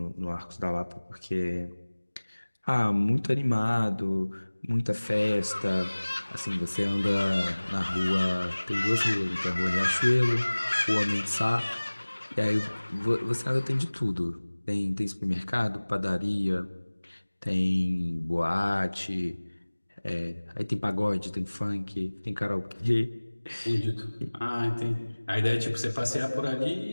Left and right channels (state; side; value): inverted; both; correlation -1.00